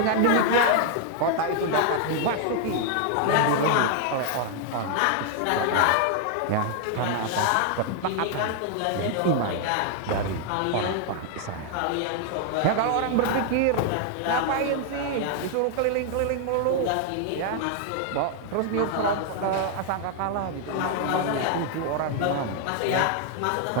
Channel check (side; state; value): both; different; correlation 0.00